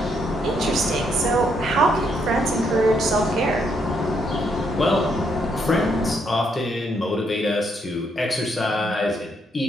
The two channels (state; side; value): normal; both; correlation 0.74